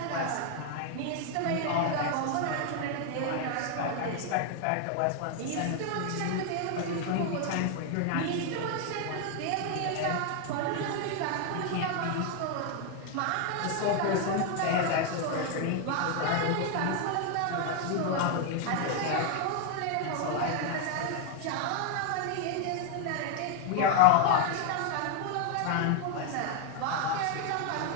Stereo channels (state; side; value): different; both; correlation 0.01